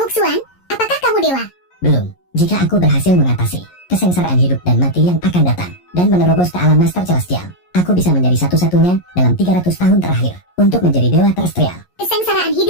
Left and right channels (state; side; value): late; right; 11 ms